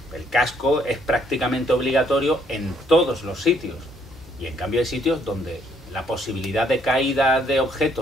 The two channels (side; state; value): both; normal; correlation 0.67